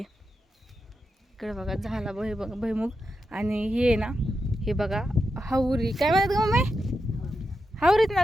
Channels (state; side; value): normal; both; correlation 0.88